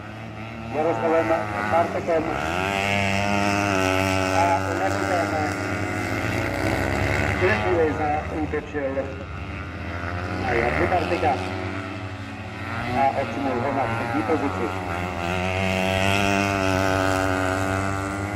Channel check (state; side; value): identical; both; correlation 1.00